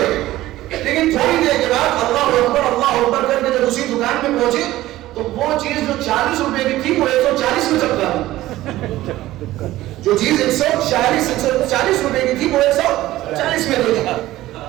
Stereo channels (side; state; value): left; quieter; 15.9 dB